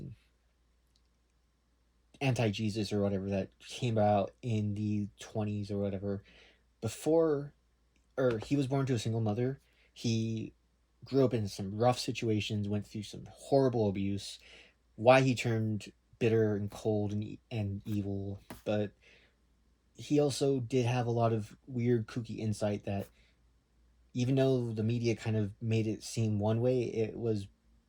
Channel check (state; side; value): identical; both; correlation 1.00